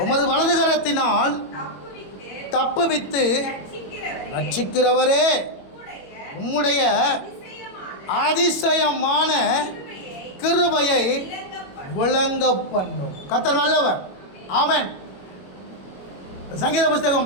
உமது வலதுகரத்தினால் தப்புவித்து ரட்சிக்கிறவரே, உம்முடைய அதிசயமான கிருபையை விளங்க பண்ணும். கர்த்தர் நல்லவர். ஆமென். சங்கீத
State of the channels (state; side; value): late; right; 21 ms